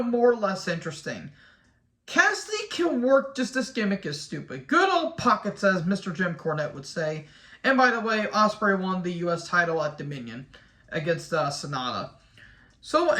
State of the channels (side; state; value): both; identical; correlation 1.00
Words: more or less interesting. Cassidy can work, just this gimmick is stupid. Good old pockets, as Mr. Jim Cornette would say. And by the way, Ospreay won the US title at Dominion against Sonata. So